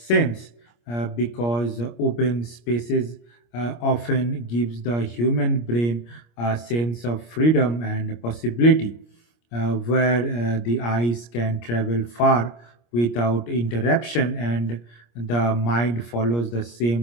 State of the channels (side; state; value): right; late; 25 ms